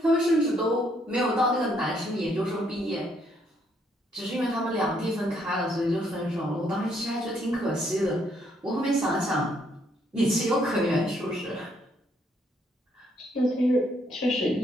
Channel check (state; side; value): normal; both; correlation 0.71